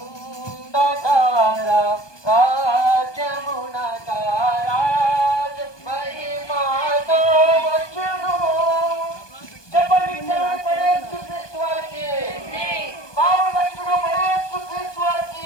రాజ్యమునక రాజు మహిమతో వచ్చును. చెప్పండి యేసుక్రీస్తు వారికి, పావులక్షుడు యేసుక్రీస్తు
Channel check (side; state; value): right; late; 1.2 ms